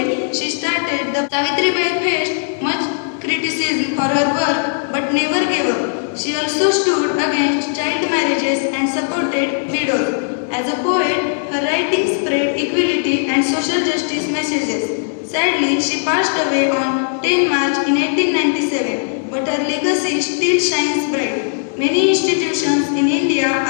she started the Savitribai faced much criticism for her work but never gave up. She also stood against child marriages and supported widows. As a poet, her writings spread equality and social justice messages. Sadly, she passed away on 10 March in 1897, but her legacy still shines bright. Many institutions in India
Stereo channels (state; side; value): silent; right; digital silence